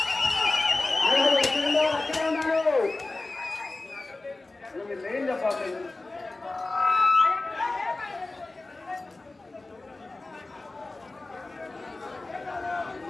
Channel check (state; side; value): quieter; right; 3.2 dB